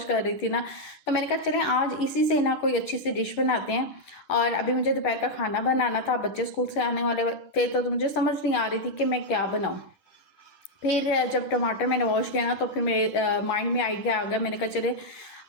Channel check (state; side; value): late; right; 10 ms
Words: कर रही थी ना, तो मैंने कहा चले आज इसी से ना कोई अच्छी सी डिश बनाते हैं। और अभी मुझे दोपहर का खाना बनाना था, बच्चे स्कूल से आने वाले थे, तो मुझे समझ नहीं आ रही थी कि मैं क्या बनाऊँ। फिर जब टमाटर मैंने वॉश किया ना, तो फिर मेरे माइंड में आइडिया आ गया। मैंने कहा चले